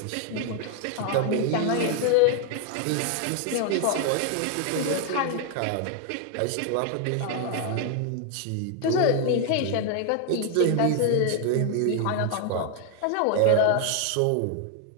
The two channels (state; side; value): different; both; correlation 0.00